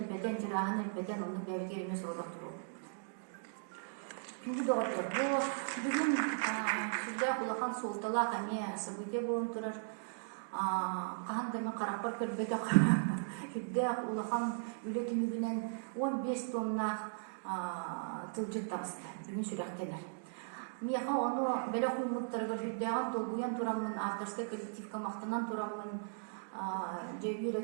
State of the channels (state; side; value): silent; left; digital silence